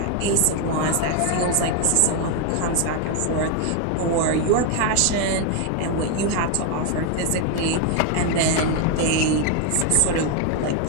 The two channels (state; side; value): different; both; correlation 0.01